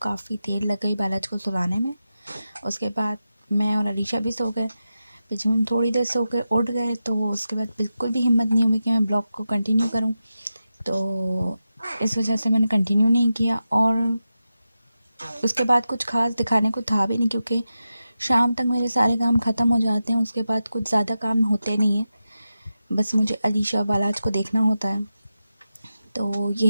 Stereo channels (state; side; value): inverted; both; correlation -0.91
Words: काफ़ी देर लग गई बालाज को सुलाने में। उसके बाद मैं और अलीशा भी सो गए। फिर जब हम थोड़ी देर सो के उठ गए तो उसके बाद बिल्कुल भी हिम्मत नहीं हुई कि मैं ब्लॉग को कंटिन्यू करूं, तो इस वजह से मैंने कंटिन्यू नहीं किया। और उसके बाद कुछ खास दिखाने को था भी नहीं क्योंकि शाम तक मेरे सारे काम ख़त्म हो जाते हैं। उसके बाद कुछ ज़्यादा काम होते नहीं हैं, बस मुझे अलीशा बालाज को देखना होता है, तो